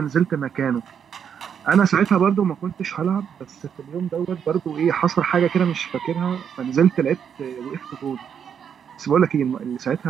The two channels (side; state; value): left; quieter; 7.8 dB